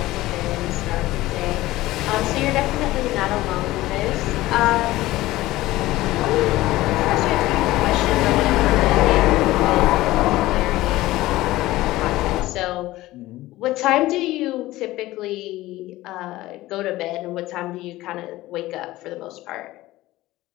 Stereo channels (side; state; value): right; quieter; 17.3 dB